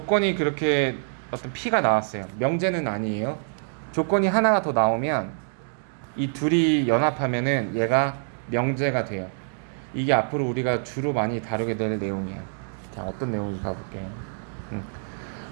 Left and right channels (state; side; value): silent; left; digital silence